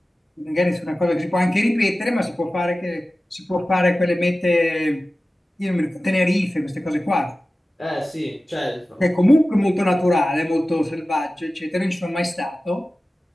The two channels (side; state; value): both; normal; correlation 0.96